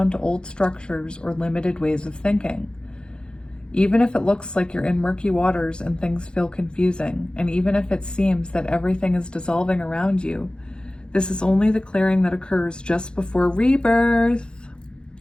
to old structures or limited ways of thinking. Even if it looks like you're in murky waters and things feel confusing, and even if it seems that everything is dissolving around you, this is only the clearing that occurs just before rebirth.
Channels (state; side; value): late; right; 0.050 ms